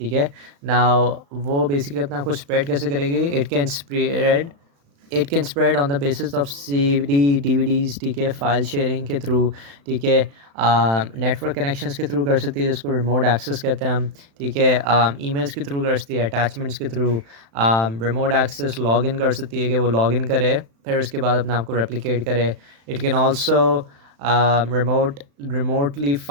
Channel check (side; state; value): left; late; 36 ms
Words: है ना। वो बेसिकली अपने आप को स्प्रेड कैसे करेगी? It can spread on the basis of CD DVDs, ठीक है, फाइल शेयरिंग के थ्रू, ठीक है, नेटवर्क कनेक्शंस के थ्रू कर सकती है, जिसको रिमोट एक्सेस कहते हैं हम, ठीक है, ईमेल्स के थ्रू कर सकती है, अटैचमेंट्स के थ्रू, रिमोट एक्सेस लॉगिन कर सकती है कि वो लॉगिन करे, फिर उसके बाद अपने आप को रेप्लिकेट करे। It can also remotely